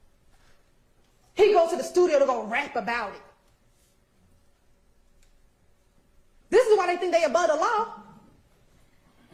He goes to the studio to go rap about it. This is why they think they above the law.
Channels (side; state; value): both; identical; correlation 1.00